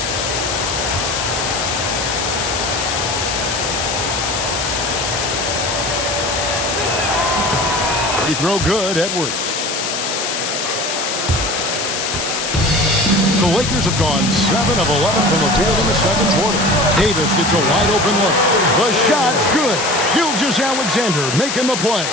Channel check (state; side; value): noise; left; hiss, 3 dB below the sound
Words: Free throw good, Edwards. The Lakers have gone 7 of 11 from the field in the second quarter. Davis gets a wide open look. The shot's good. Gilgeous-Alexander making the play.